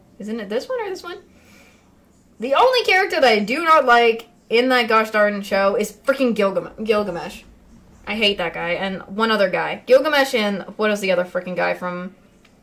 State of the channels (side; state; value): both; identical; correlation 1.00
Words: isn't it this one or this one? The only character that I do not like in that gosh darn show is freaking Gilgamesh. I hate that guy. And one other guy. Gilgamesh and... What is the other freaking guy from...